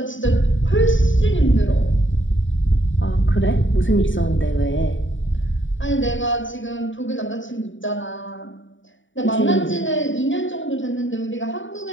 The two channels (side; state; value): right; late; 0.56 ms